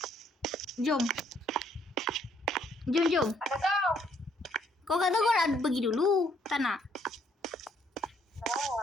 Jom. Ada kau. Kau kata kau nak pergi dulu. Tak nak?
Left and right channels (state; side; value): normal; both; correlation 0.67